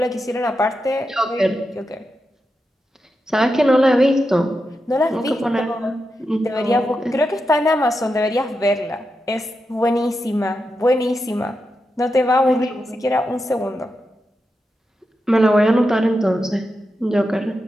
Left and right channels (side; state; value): both; normal; correlation 0.88